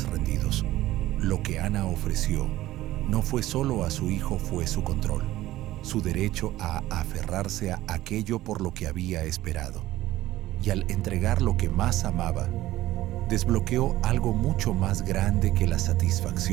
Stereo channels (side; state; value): left; quieter; 15.7 dB